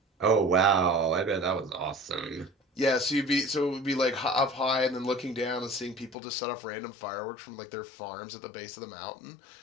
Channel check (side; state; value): right; drops out; at 6.2 s